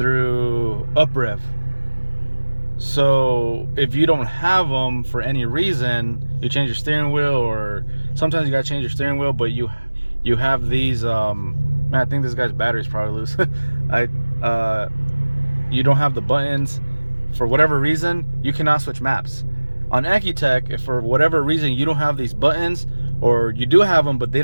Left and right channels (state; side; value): inverted; both; correlation -1.00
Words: UpRev. So if you don't have them for any reason, you change your steering wheel, or sometimes you gotta change your steering wheel, but you have these man, I think this guy's battery's probably loose. You don't have the buttons for whatever reason, you cannot switch maps. On Ecutek, if for whatever reason you don't have these buttons, or you do have them but they